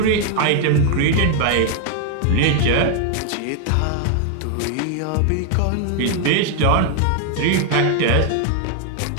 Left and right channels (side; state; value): both; different; correlation 0.00